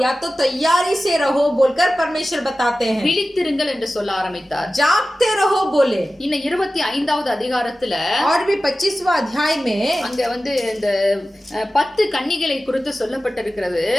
या तो तैयारी से रहो बोलकर परमेश्वर बताते हैं। விழித்திருங்கள் என்று சொல்ல ஆரம்பித்தார். जागते रहो बोले। இன்னும் 25வது அதிகாரத்துல और भी 25वां अध्याय में அங்க வந்து இந்த 10 கன்னிகளை குறித்து சொல்லப்பட்டிருக்கிறது.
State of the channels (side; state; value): both; normal; correlation 0.95